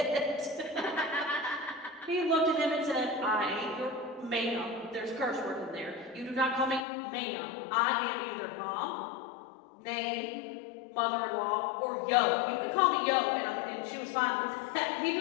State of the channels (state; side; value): drops out; right; at 6.9 s